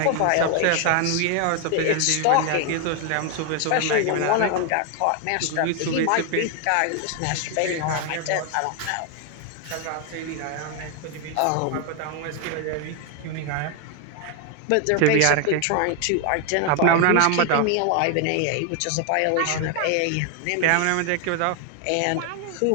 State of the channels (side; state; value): both; different; correlation 0.01